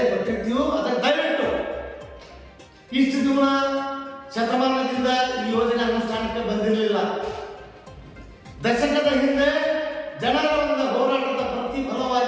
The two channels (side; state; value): both; identical; correlation 1.00